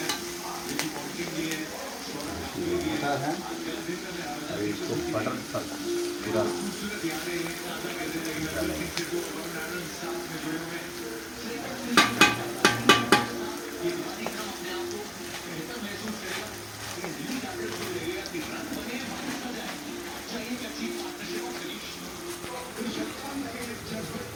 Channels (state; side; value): identical; both; correlation 1.00